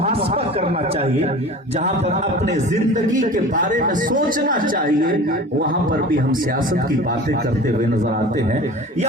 کرنا چاہیے، جہاں پر اپنے زندگی کے بارے میں سوچنا چاہیے، وہاں پر بھی ہم سیاست کی باتیں کرتے ہوئے نظر آتے ہیں۔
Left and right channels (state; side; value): normal; both; correlation 0.38